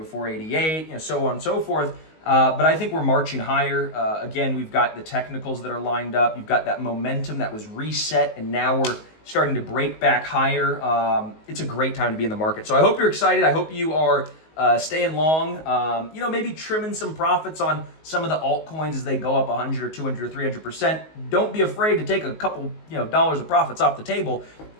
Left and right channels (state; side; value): late; right; 19 ms